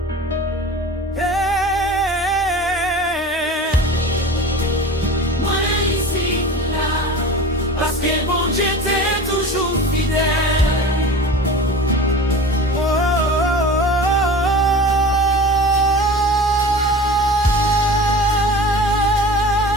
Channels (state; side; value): normal; both; correlation 0.36